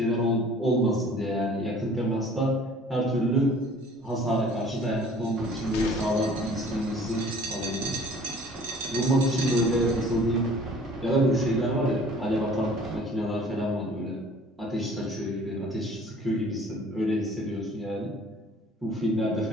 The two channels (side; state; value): both; normal; correlation 0.51